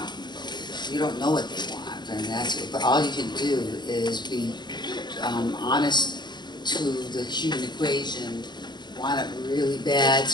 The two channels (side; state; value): right; late; 0.21 ms